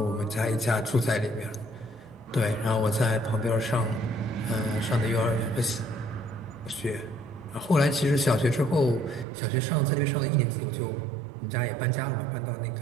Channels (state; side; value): drops out; left; at 9.2 s